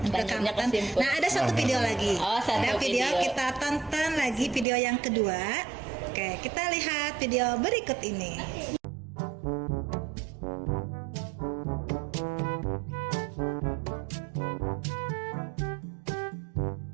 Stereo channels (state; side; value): drops out; left; at 4.7 s